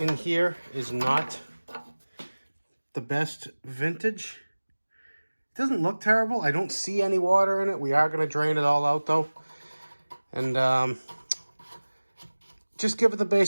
here is not the best vintage. It doesn't look terrible. I don't see any water in it. We are going to drain it all out though. And just give it the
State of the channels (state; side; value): inverted; both; correlation -1.00